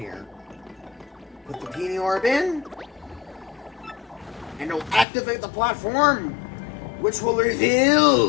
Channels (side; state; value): right; drops out; at 5.1 s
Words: Put the peony orb in. And it'll activate the platform, which will